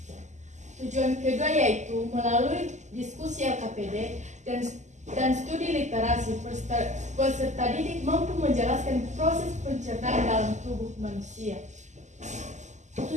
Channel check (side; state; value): left; late; 0.34 ms